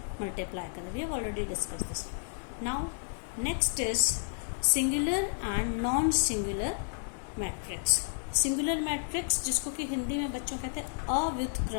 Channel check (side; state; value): right; silent; digital silence